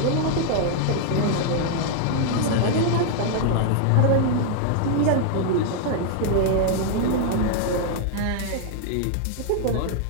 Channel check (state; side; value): different; both; correlation 0.00